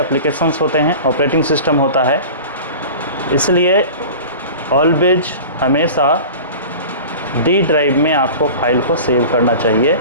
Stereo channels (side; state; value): both; inverted; correlation -0.36